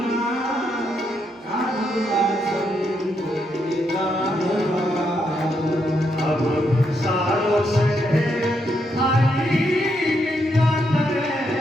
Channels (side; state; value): both; normal; correlation 0.78